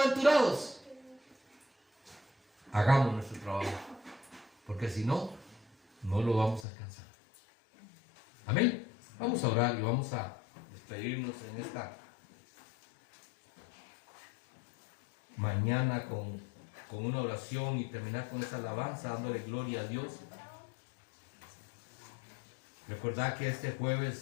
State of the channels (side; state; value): right; drops out; at 6.7 s